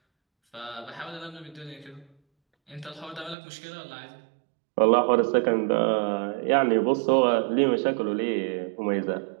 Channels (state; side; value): drops out; left; at 3.4 s